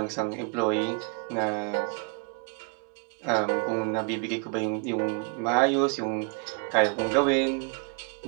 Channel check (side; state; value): left; quieter; 33.8 dB